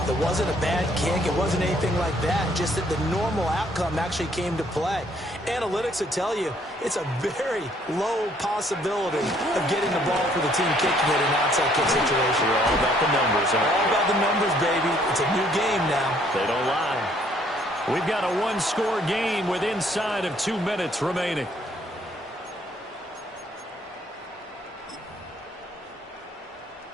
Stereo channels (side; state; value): both; normal; correlation 0.64